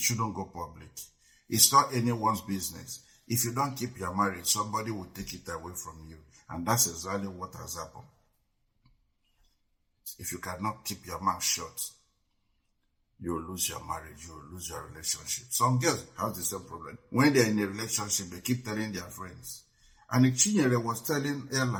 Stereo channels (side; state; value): both; identical; correlation 1.00